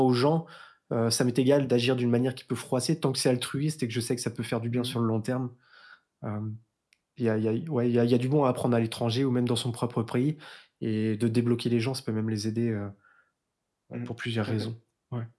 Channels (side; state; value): both; identical; correlation 1.00